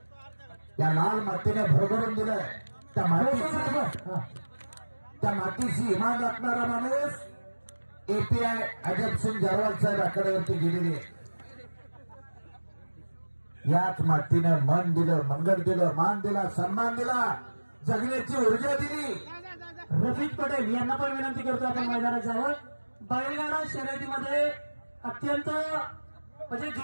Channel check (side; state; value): both; inverted; correlation -1.00